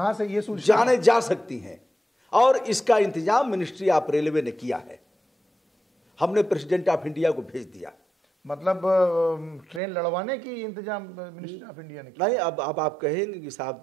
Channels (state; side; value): drops out; left; at 9.8 s